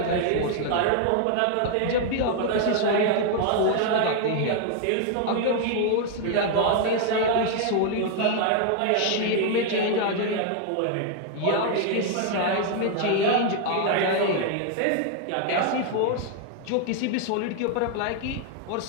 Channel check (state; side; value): different; both; correlation 0.00